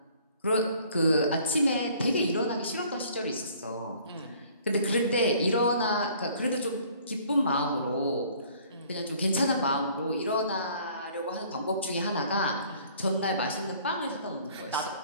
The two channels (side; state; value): both; inverted; correlation -0.56